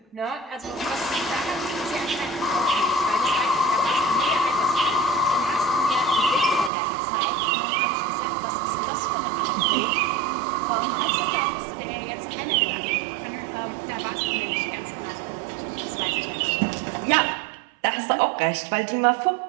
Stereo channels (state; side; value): drops out; left; at 6.7 s